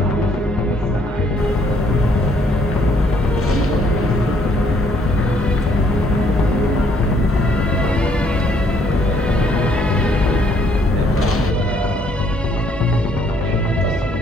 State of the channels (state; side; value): normal; both; correlation 0.66